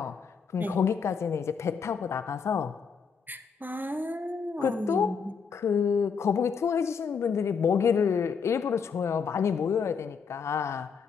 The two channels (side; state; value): right; quieter; 6.0 dB